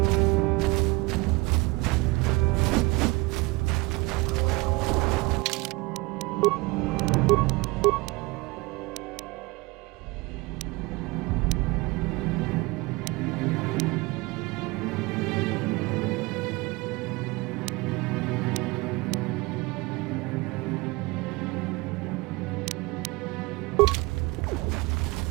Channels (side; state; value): left; quieter; 24.1 dB